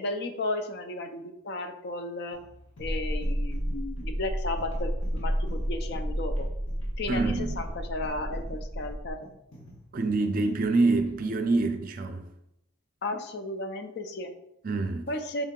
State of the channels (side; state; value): both; normal; correlation 0.63